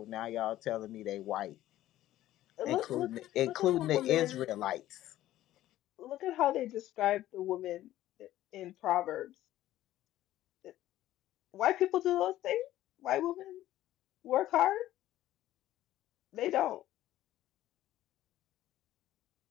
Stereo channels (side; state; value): right; quieter; 14.1 dB